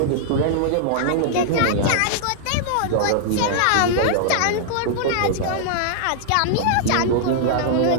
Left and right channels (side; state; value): both; different; correlation -0.01